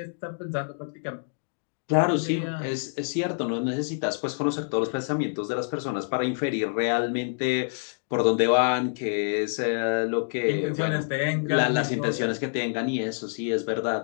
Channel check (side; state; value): right; silent; digital silence